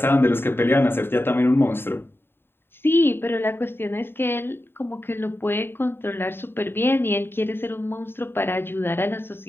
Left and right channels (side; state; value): right; late; 0.11 ms